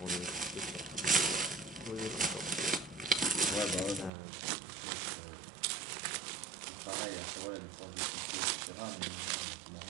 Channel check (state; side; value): drops out; left; at 4.1 s